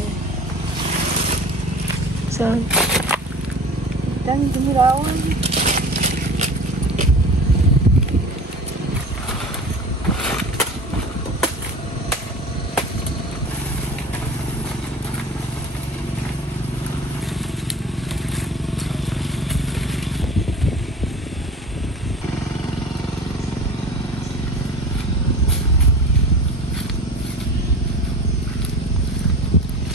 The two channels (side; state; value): both; normal; correlation 0.38